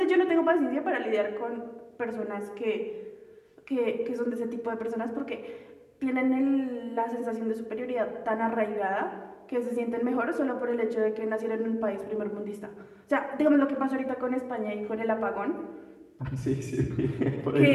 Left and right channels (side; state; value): both; identical; correlation 1.00